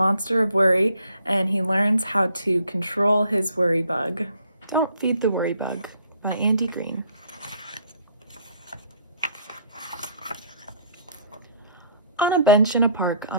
of worry, and he learns how to control his WorryBug. Don't Feed the WorryBug by Andi Green. On a bench in a park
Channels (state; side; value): inverted; both; correlation -0.62